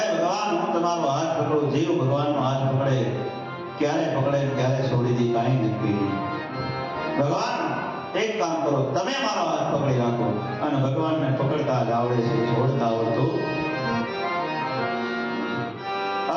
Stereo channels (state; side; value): identical; both; correlation 1.00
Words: ભગવાન હું તમારો હાથ પકડું. જીવ ભગવાનનો હાથ પકડે, ક્યારે પકડે ક્યારે છોડી દે કાંઈ નક્કી નહીં. ભગવાન એક કામ કરો, તમે મારો હાથ પકડી રાખો. અને ભગવાનને પકડતા જ આવડે છે, છોડતા આવડતું.